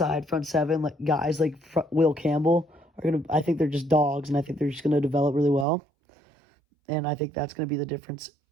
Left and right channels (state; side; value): drops out; left; at 5.7 s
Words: front seven like guys like Will Campbell are going to. I think they're just dogs, and I think they're just going to develop really well. And I think that's going to be the difference